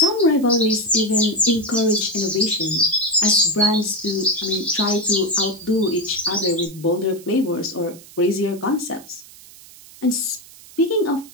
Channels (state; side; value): noise; right; hiss, 21 dB below the sound